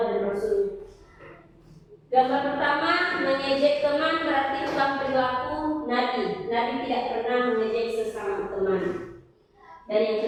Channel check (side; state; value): both; identical; correlation 1.00